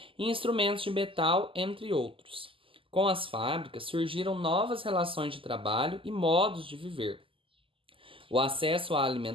e instrumentos de metal, entre outros. Com as fábricas surgiram novas relações de trabalho e modos de viver. O acesso à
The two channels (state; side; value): late; left; 0.25 ms